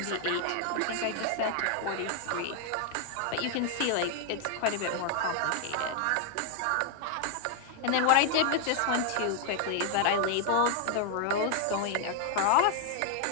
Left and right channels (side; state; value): both; different; correlation 0.00